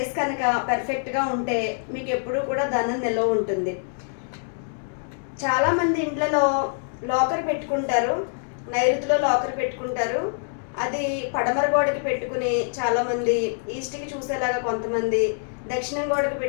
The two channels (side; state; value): right; silent; digital silence